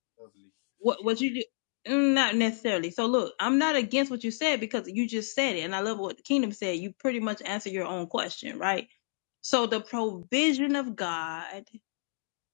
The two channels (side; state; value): right; silent; digital silence